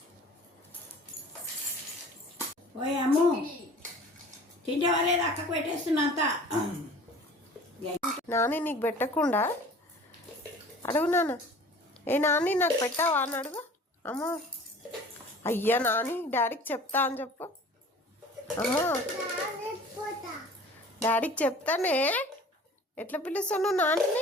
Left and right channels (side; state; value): both; normal; correlation 0.45